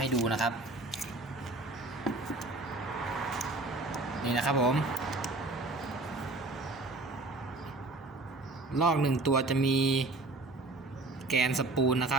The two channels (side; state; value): left; quieter; 3.0 dB